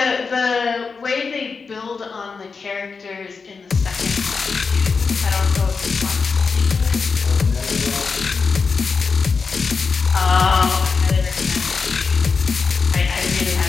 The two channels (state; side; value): quieter; right; 4.9 dB